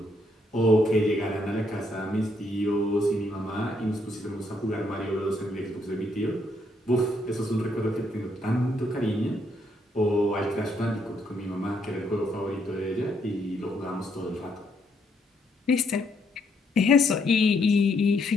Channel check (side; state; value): both; normal; correlation 0.73